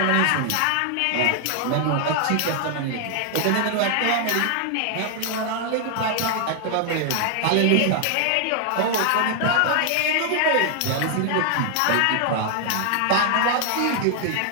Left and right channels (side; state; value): both; different; correlation 0.00